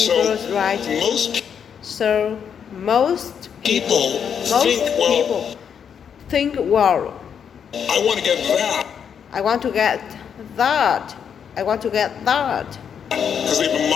diverse, right? Most So most people think, well, people think, well, I want to get that I want to get that. I want to get that. because they've been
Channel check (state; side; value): quieter; right; 7.6 dB